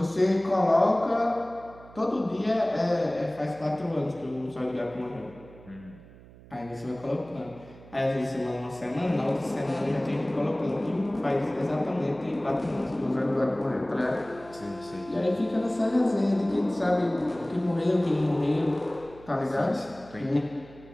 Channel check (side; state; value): right; noise; hum, 21 dB below the sound